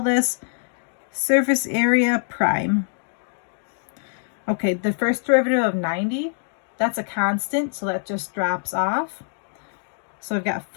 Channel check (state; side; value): silent; right; digital silence